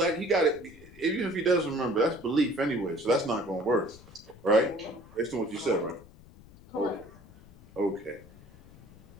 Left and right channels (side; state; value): left; noise; rumble, 22 dB below the sound